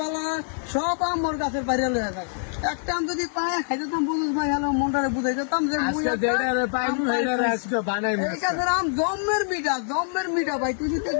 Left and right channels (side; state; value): right; silent; 62 dB below the other